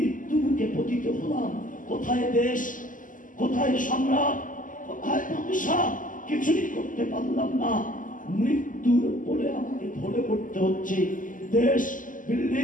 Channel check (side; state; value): right; late; 0.38 ms